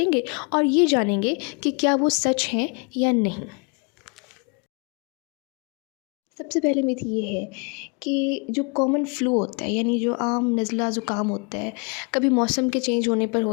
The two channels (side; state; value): right; quieter; 34.8 dB